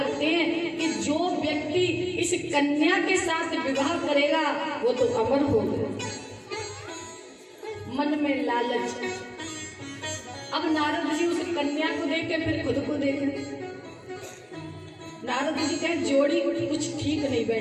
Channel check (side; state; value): both; identical; correlation 1.00